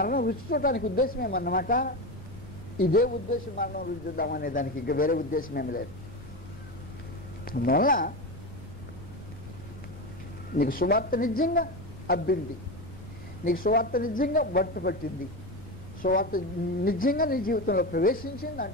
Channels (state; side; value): normal; both; correlation 0.19